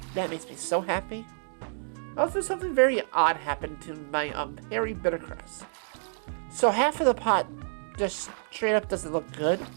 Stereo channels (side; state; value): left; silent; digital silence